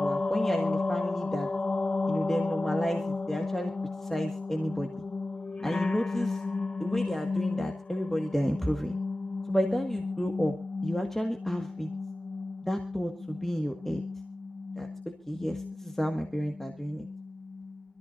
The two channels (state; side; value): normal; both; correlation 0.96